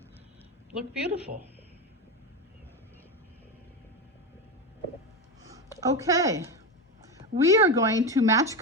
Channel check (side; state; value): both; normal; correlation 0.16